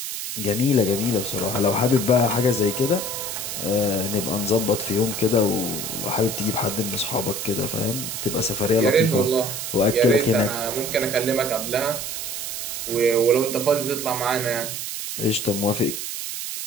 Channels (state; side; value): noise; right; hiss, 5 dB below the sound